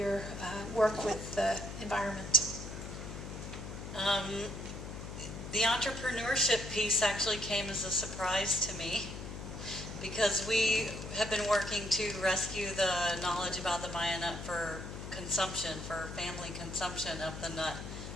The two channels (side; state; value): left; noise; hum, 9 dB below the sound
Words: work with the environment? The entrepreneurship piece actually came as a surprise to me, because we have been working to rescue the knowledge about the Maya nut for consumption, for family consumption of the nut,